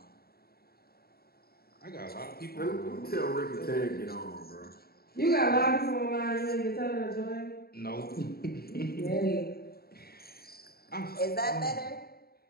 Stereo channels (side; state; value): right; late; 0.45 ms